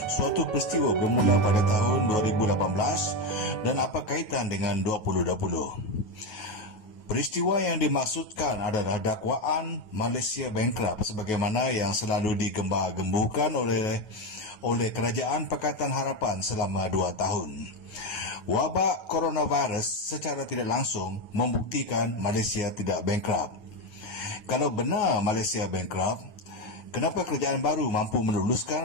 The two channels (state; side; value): late; right; 9.4 ms